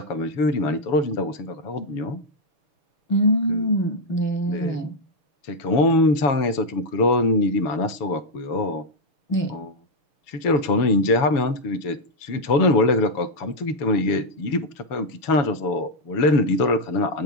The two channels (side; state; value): right; late; 7.0 ms